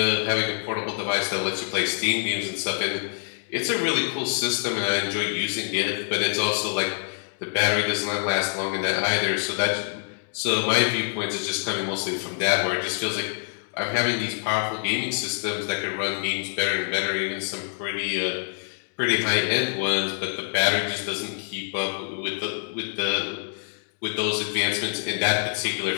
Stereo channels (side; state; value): right; silent; digital silence